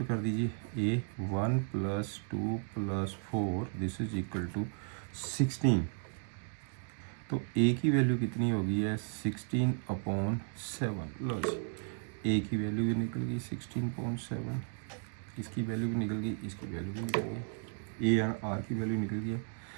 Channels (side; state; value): left; silent; 55 dB below the other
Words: कर दीजिए, A 1 plus 2 plus 4 this is equal to 16, तो ए की वैल्यू कितनी होगी है, 16/7, लो जी ए की वैल्यू भी निकल गई 16.7, इसकी वैल्यू भी निकल गई, इसकी वैल्यू भी निकल गई, ए एंड आर की वैल्यू निकल गई है।